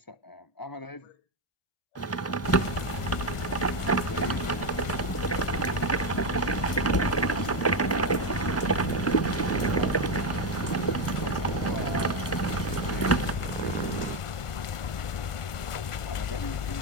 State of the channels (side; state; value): right; late; 1.4 ms